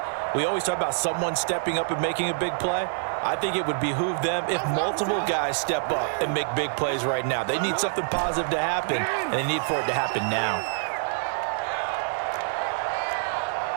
we always talk about someone stepping up and making a big play. I think it would behoove them if multiple guys step up and make big plays right now. They need something positive to happen, and they need for it to happen now.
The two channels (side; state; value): left; silent; digital silence